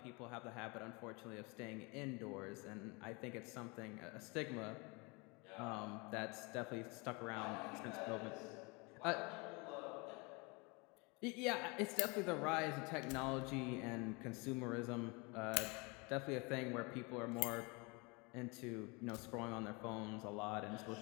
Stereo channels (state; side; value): quieter; right; 28.7 dB